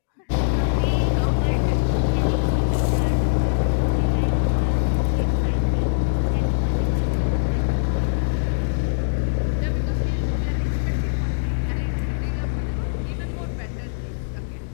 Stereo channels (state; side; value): silent; right; digital silence